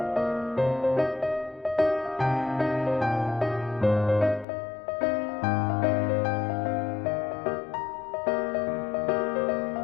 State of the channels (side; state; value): right; drops out; at 4.5 s